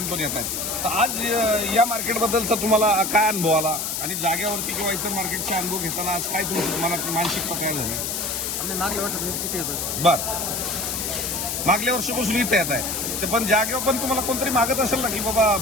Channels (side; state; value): left; noise; hiss, 2 dB below the sound